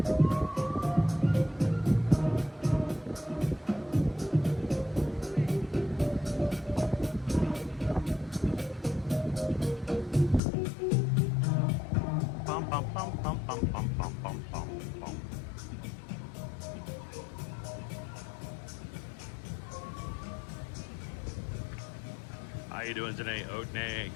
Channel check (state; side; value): drops out; right; at 10.4 s